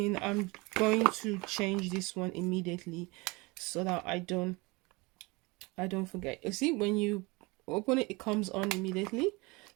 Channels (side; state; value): left; quieter; 25.2 dB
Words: I'm going to change this one immediately so that I don't forget. You see, when you open it, it comes on immediately.